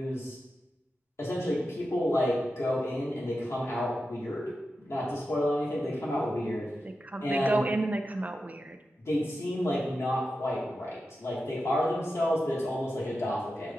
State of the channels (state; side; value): normal; both; correlation 0.90